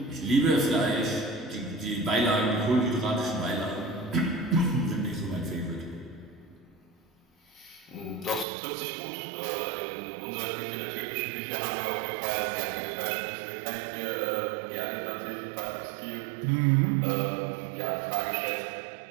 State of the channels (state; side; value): drops out; left; at 8.5 s